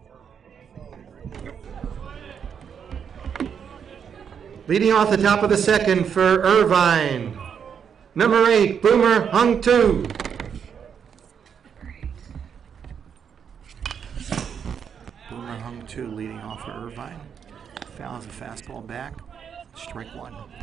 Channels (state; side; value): quieter; left; 7.4 dB